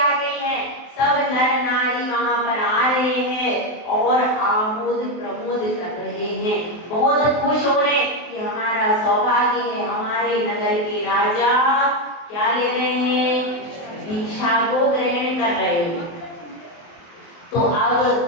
गई है। सब नर नारी वहां पर आ रहे हैं और आमोद प्रमोद कर रहे हैं, बहुत खुश हो रहे हैं कि हमारा सौभाग्य है, हमारे नगर के राजा क्या ले रहे हैं? दीक्षा को ग्रहण कर रहे हैं। तो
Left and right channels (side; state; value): right; late; 23 ms